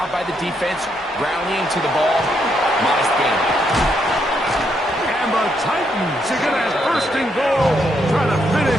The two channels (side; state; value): both; normal; correlation 0.77